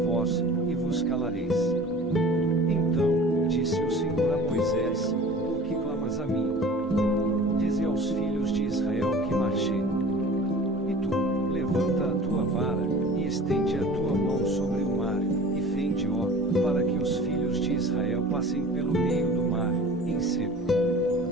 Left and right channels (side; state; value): both; normal; correlation 0.42